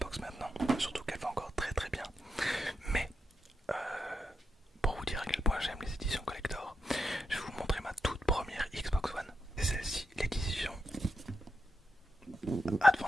maintenant, surtout qu'elle va encore très très bien. Mais pour vous dire à quel point j'aime les éditions collector, je vais vous montrer ma toute première Xbox One. C'est celle-ci, l'édition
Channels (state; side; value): normal; both; correlation 0.85